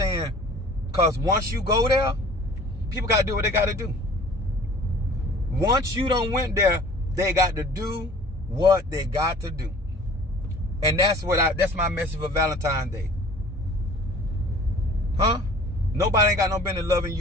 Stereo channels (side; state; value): both; normal; correlation 0.48